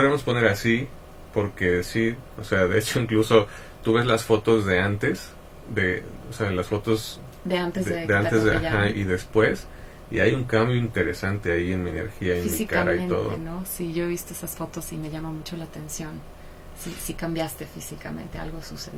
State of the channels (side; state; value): both; identical; correlation 1.00